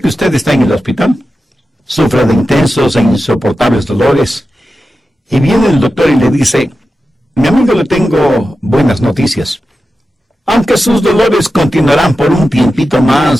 usted está en el hospital, sufre de intensos e insoportables dolores, y viene el doctor y le dice: mi amigo, le tengo buenas noticias. Aunque sus dolores continuarán por un tiempito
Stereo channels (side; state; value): both; normal; correlation 0.92